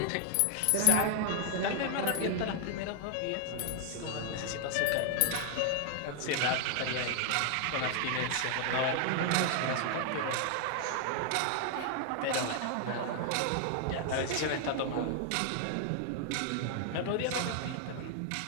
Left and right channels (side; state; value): both; different; correlation 0.00